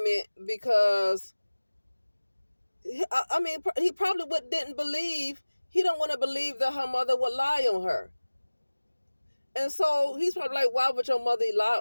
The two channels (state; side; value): inverted; both; correlation -1.00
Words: because, I mean, he probably didn't believe, he don't want to believe that her mother would lie on her. And so he's probably like, why would your mother lie